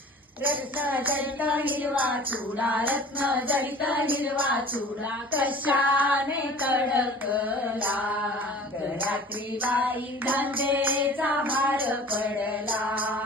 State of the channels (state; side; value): normal; both; correlation 0.44